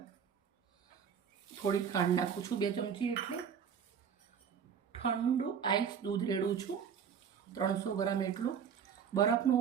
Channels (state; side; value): quieter; left; 7.5 dB